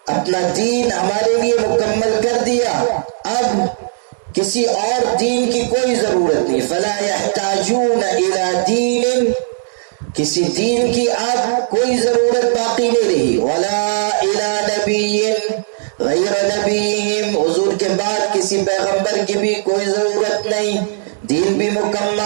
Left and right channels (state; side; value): silent; left; digital silence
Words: اپنا دین ہمارے لیے مکمل کر دیا، اب کسی اور دین کی کوئی ضرورت نہیں۔ فلا يحتاجون الى دین، کسی دین کی اب کوئی ضرورت باقی نہیں رہی۔ ولا الى نبی غیر نبیہم، حضور کے بعد کسی پیغمبر کی بھی کوئی ضرورت نہیں، دین بھی